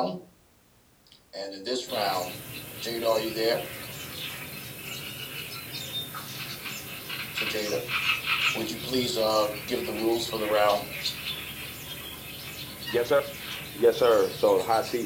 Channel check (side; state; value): both; identical; correlation 1.00